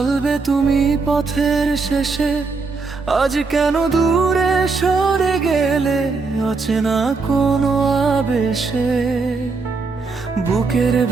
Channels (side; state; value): left; quieter; 4.3 dB